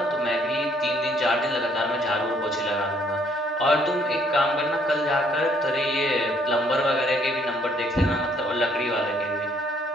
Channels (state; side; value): normal; both; correlation 0.65